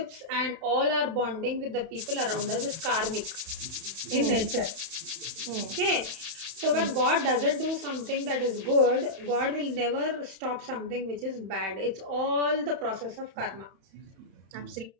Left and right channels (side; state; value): left; late; 31 ms